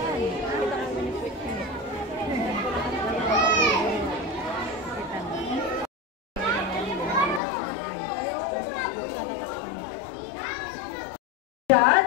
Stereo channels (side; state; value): right; drops out; at 7.4 s